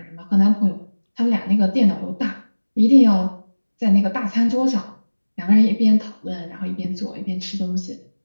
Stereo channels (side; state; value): both; inverted; correlation -1.00